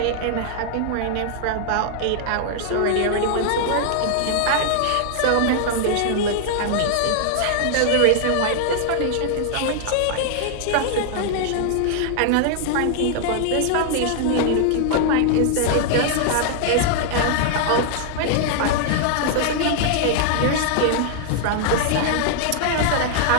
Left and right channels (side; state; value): both; different; correlation -0.01